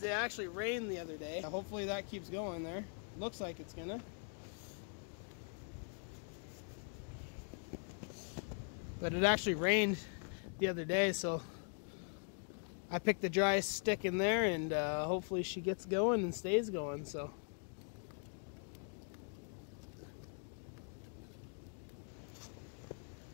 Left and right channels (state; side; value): silent; right; 50 dB below the other